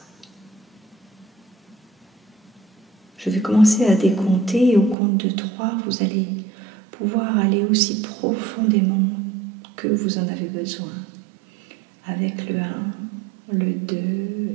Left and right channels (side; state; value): left; drops out; at 5.0 s